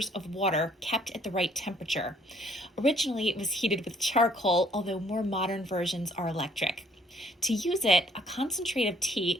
of water kept at the right temperature. Originally, it was heated with charcoal, although more modern versions are electric. To use it, a concentrate of tea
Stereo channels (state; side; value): normal; both; correlation 0.61